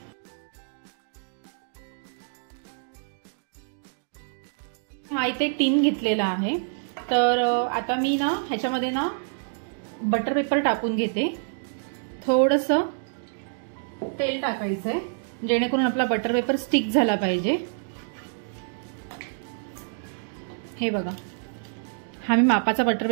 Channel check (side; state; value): left; silent; digital silence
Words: हा इथे टीन घेतलेला आहे. तर आता मी ना ह्याच्यामध्ये ना बटर पेपर टाकून घेते. थोडंसं तेल टाकायचंय जेणेकरून आपला बटर पेपर स्टिक झाला पाहिजे. हे बघा हा मी मापाचा बटर